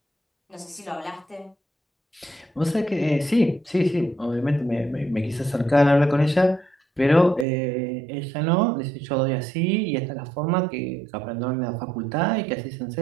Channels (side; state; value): left; drops out; at 7.5 s